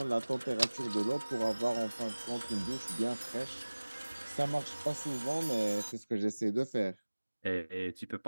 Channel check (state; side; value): inverted; both; correlation -1.00